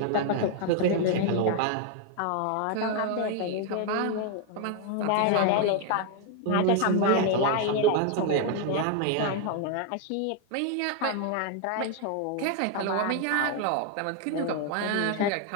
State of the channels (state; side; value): different; both; correlation 0.00